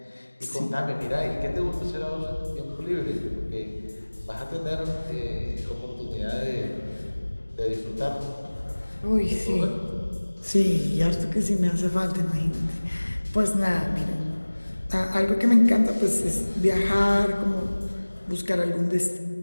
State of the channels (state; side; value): inverted; both; correlation -1.00